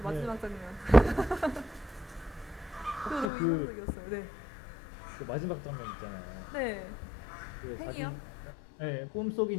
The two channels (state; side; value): drops out; right; at 3.3 s